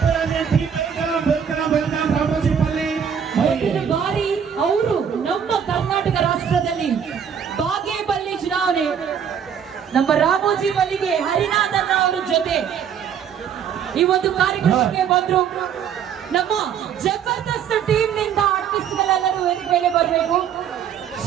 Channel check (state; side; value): quieter; left; 8.0 dB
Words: ವೆಲ್ಕಮ್ ರಾಮೋಜಿಪಲ್ಲಿ. ಮುಂದಿನ ಬಾರಿ ಅವರು ನಮ್ಮ ಕರ್ನಾಟಕ ರಾಷ್ಟ್ರದಲ್ಲಿ ಬಾಗೇಪಲ್ಲಿ ಚುನಾವಣೆ ನಮ್ಮ ರಾಮೋಜಿಪಲ್ಲಿಗೆ ಹರಿನಾಥನ್ ಅವರ ಜೊತೆ ಈ ಒಂದು ಕಾರ್ಯಕ್ರಮಕ್ಕೆ ಬಂದ್ರು. ನಮ್ಮ ಜಬರ್ದಸ್ತ್ ಟೀಮ್ ನಿಂದ ಆರ್ಟಿಸ್ಟ್ಗಳೆಲ್ಲರೂ ವೇದಿಕೆ ಮೇಲೆ ಬರಬೇಕು.